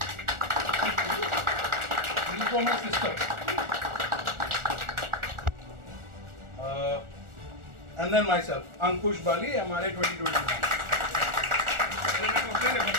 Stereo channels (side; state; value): left; late; 1.4 ms